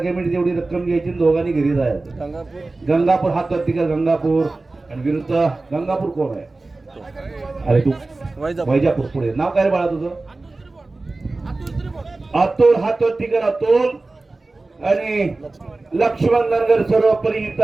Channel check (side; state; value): left; quieter; 3.3 dB